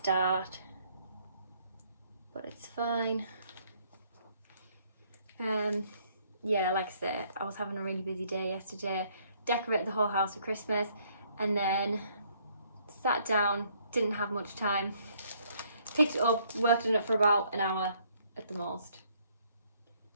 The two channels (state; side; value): inverted; both; correlation -0.66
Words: but it's fine. Yeah, like I said, I was having a really busy day yesterday. Decorated the whole house for Christmas and then sat down, didn't have much time. Picked it up, worked on it for about an hour at the most.